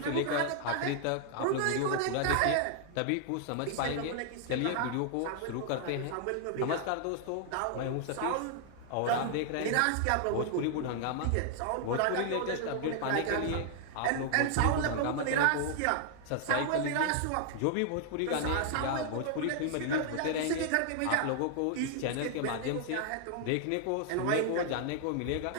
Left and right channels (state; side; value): different; both; correlation 0.00